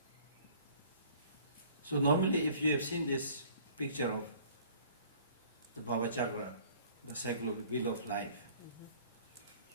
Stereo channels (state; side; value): inverted; both; correlation -0.52